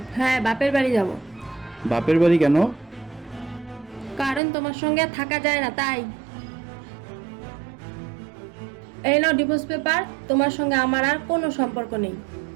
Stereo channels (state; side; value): drops out; left; at 4.4 s